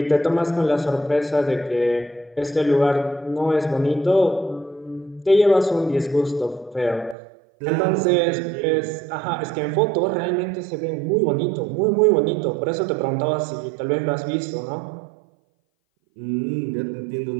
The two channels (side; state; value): left; drops out; at 7.2 s